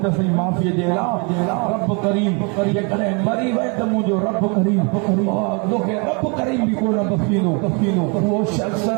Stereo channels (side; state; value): left; quieter; 33.1 dB